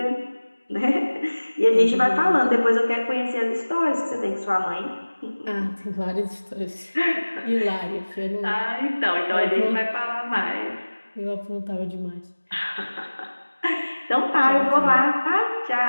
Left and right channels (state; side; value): inverted; both; correlation -1.00